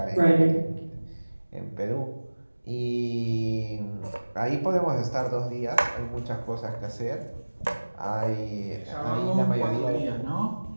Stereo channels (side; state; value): both; inverted; correlation -1.00